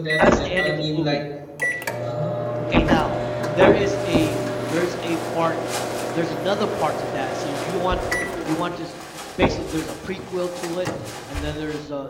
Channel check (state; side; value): identical; both; correlation 1.00